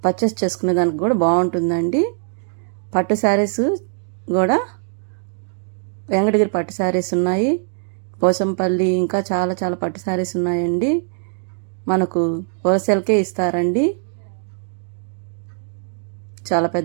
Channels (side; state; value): left; silent; 65 dB below the other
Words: పర్చేస్ చేసుకునే దానికి కూడా బాగుంటుందండి. పట్టు శారీస్ కూడా వెంకటగిరి పట్టు శారీస్ ఉన్నాయి. పోసంపల్లి ఇంకా చాలా చాలా పట్టు శారీస్ ఉన్నాయండి. మనకు హోల్సేల్కే ఇస్తారండి. చాలా